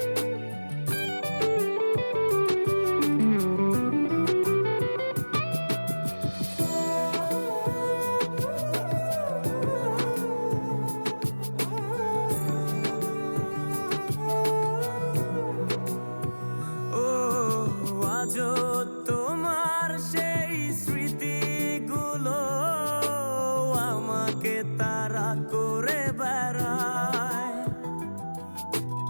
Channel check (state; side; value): inverted; both; correlation -1.00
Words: আজও তোমার সেই স্মৃতিগুলো আমাকে তাড়া করে বেড়ায়।